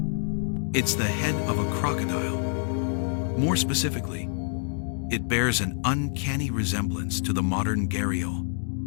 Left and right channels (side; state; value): right; silent; 60 dB below the other